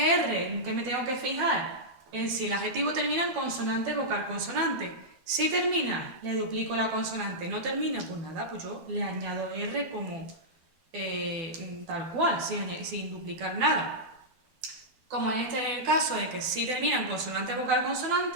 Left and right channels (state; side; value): late; left; 12 ms